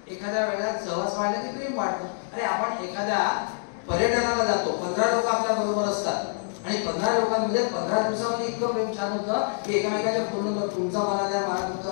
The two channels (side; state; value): right; silent; digital silence